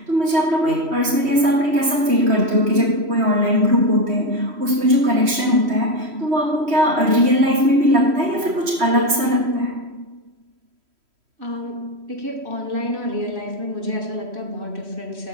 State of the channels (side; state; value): left; late; 3.1 ms